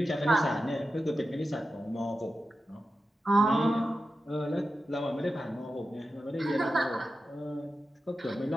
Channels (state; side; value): normal; both; correlation 0.91